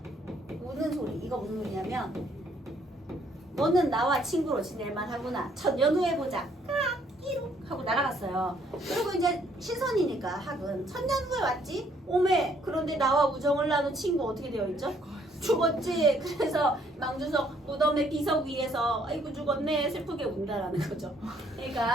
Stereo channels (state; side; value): normal; both; correlation 0.66